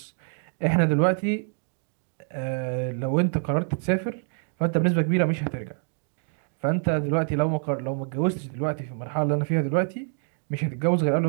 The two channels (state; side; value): silent; left; 61 dB below the other